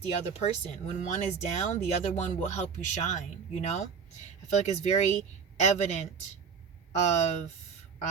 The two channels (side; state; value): left; quieter; 6.2 dB